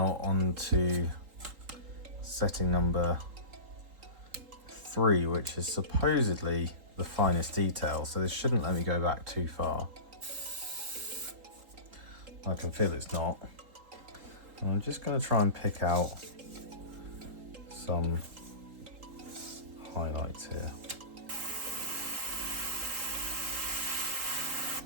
onto setting number 3, which is supposedly the finest detail, so this shouldn't let me go back too far. I can feel it's not. And I'm just going to try and pick out some highlights here.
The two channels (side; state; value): left; late; 3.8 ms